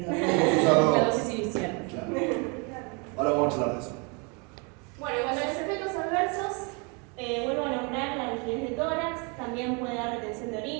La dosis inicial. Claro. Ahora vamos a hablar de eso. Bueno, en cuanto a los efectos adversos, vuelvo a nombrar la rigidez de tórax, también puede dar retención de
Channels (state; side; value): quieter; left; 32.9 dB